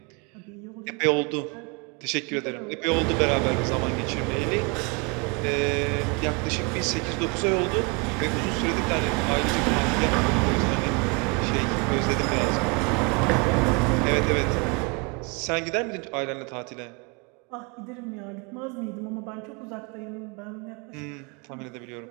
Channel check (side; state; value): left; quieter; 31.1 dB